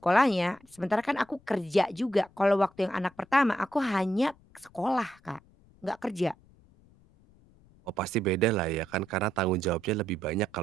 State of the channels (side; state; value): left; noise; rumble, 29 dB below the sound